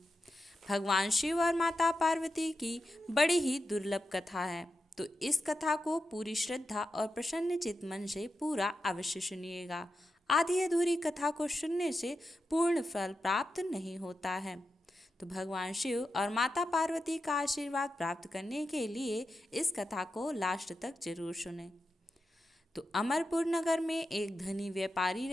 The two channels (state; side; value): normal; both; correlation 0.89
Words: भगवान शिव और माता पार्वती की बड़ी ही दुर्लभ कथा है, तो इस कथा को पूरी श्रद्धा और प्रसन्न चित्त मन से पूरा अवश्य सुनिएगा। आधी अधूरी कथा को सुनने से पूर्ण फल प्राप्त नहीं होता है। तो भगवान शिव और माता पार्वती का आशीर्वाद प्राप्त करने के लिए इस कथा को लास्ट तक जरूर सुने। तो अमरपुर नगर में एक धनी व्यापारी